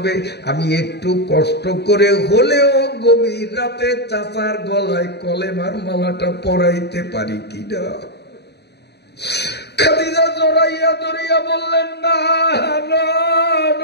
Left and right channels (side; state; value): right; late; 0.48 ms